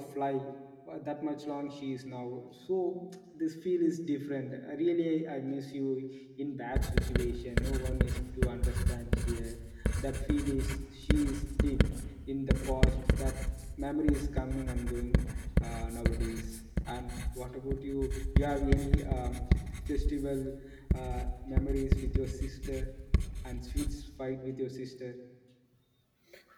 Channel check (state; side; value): identical; both; correlation 1.00